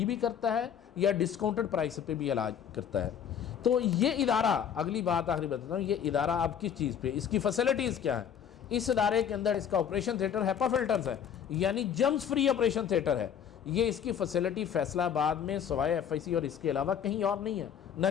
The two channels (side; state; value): right; quieter; 8.4 dB